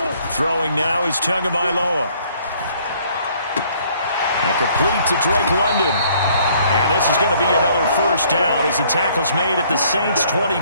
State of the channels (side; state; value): both; inverted; correlation -0.62